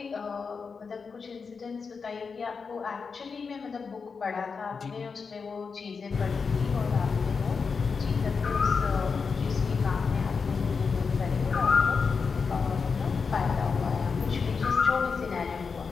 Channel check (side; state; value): right; quieter; 5.3 dB